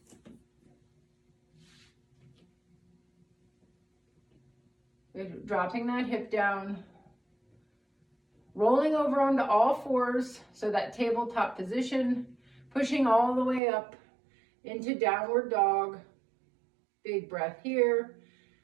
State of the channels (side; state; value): left; drops out; at 13.6 s